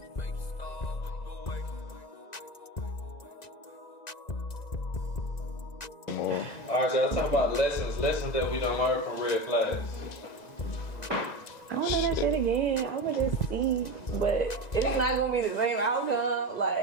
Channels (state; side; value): late; right; 1.9 ms